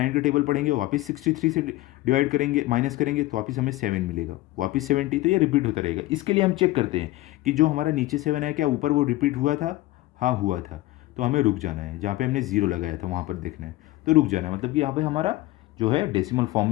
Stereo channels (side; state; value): right; quieter; 17.9 dB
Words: का टेबल पढ़ेंगे, वापस 63 से डिवाइड करेंगे, माइनस करेंगे, तो वापस हमें 7 मिलेगा, वापस 70, तो ये रिपीट होता रहेगा। इसके लिए हम चेक करते हैं कि जो हमारा नीचे 7 है क्या ऊपर वो रिपीट हुआ था? हाँ हुआ था, तो हमें रुक जाना है, जहाँ पे हमने ज़ीरो लगाया था वहाँ पर देखना है, तो रुक जाना है, मतलब कि यहाँ पे हमारा जो है डेसिमल फॉर्म